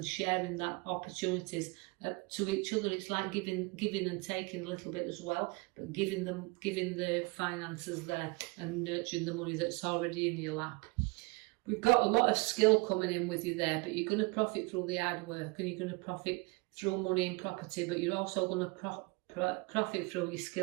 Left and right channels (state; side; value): quieter; left; 27.1 dB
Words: sharing that opportunities to each other. It's like giving and taking a little bit as well, but giving the finances there and nurturing the money that's already in your lap. We've got a lot of skill coming in with you there, but you're going to profit through the hard work and you're going to profit through money and property, but you're also going to profit through your